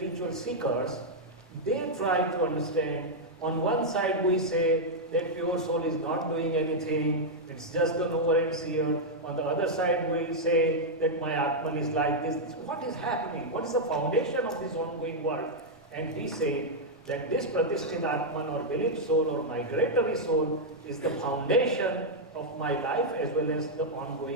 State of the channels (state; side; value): normal; both; correlation -0.03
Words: seekers, they try to understand. On one side we say that pure soul is not doing anything, it's just the knower and seer. On the other side we say that my Atman is like this. What is happening? What is the foundation of this ongoing world? And we say that this Pratisthit Atman or belief soul or migratory soul is the foundation of my life as well as the